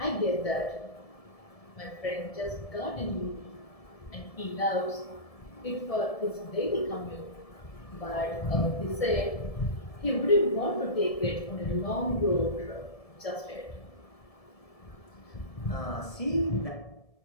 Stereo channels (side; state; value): right; late; 1.7 ms